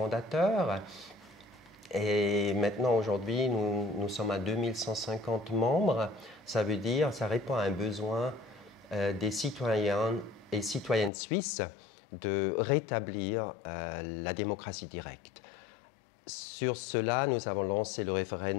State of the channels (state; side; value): drops out; right; at 11.1 s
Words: Et maintenant, aujourd'hui, nous sommes à 2150 membres. Ça veut dire, ça répond à un besoin des citoyens et citoyennes suisses de rétablir la démocratie directe. Sur cela, nous avons lancé le